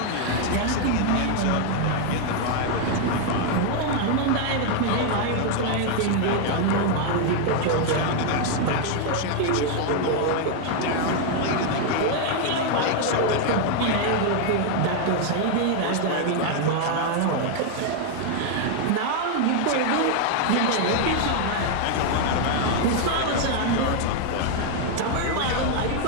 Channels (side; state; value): both; different; correlation 0.00